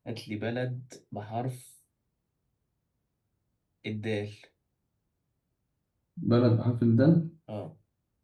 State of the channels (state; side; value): identical; both; correlation 1.00